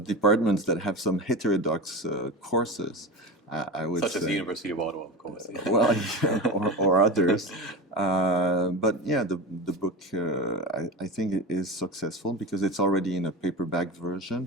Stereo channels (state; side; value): normal; both; correlation 0.25